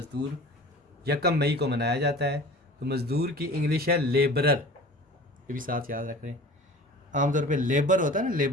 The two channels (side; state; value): both; normal; correlation 0.41